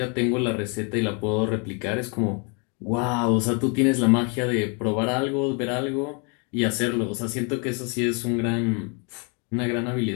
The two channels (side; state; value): right; quieter; 35.4 dB